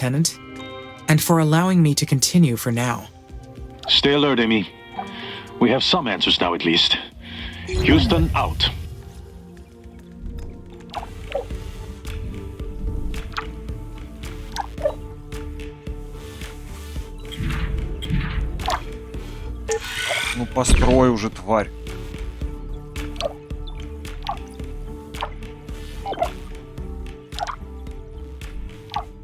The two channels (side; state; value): both; identical; correlation 1.00